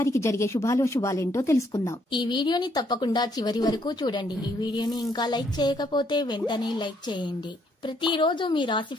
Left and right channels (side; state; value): both; normal; correlation 0.70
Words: జరిగే శుభాలేంటో తెలుసుకుందాం. ఈ వీడియోని తప్పకుండా చివరి వరకు చూడండి. ఈ వీడియోని ఇంకా లైక్ చేయకపోతే వెంటనే లైక్ చేయండి. ప్రతిరోజు మీ రాశి